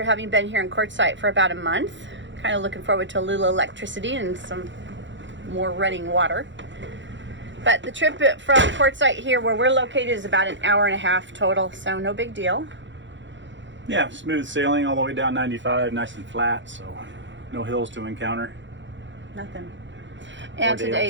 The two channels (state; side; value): late; left; 0.54 ms